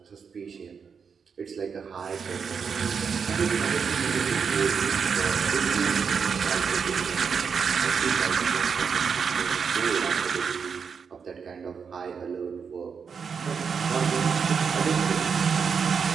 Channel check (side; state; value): left; quieter; 6.2 dB